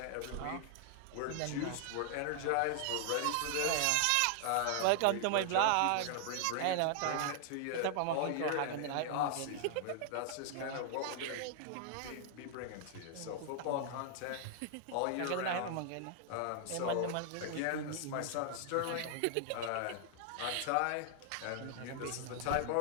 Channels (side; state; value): both; different; correlation 0.00